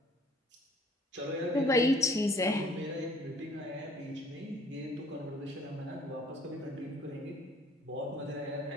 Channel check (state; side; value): normal; both; correlation 0.57